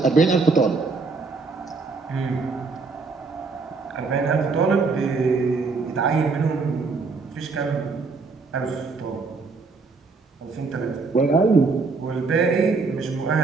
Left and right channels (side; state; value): left; quieter; 4.3 dB